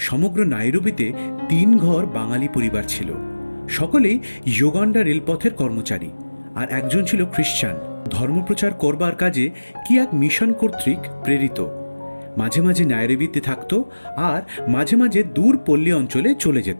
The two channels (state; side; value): inverted; both; correlation -1.00